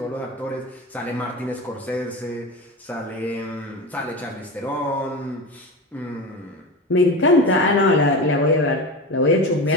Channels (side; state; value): both; normal; correlation 0.25